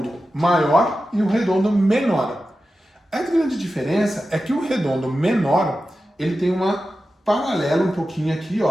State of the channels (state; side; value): normal; both; correlation 0.92